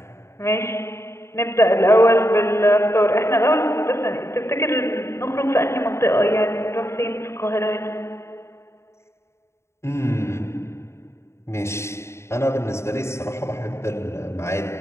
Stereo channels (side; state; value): right; late; 0.13 ms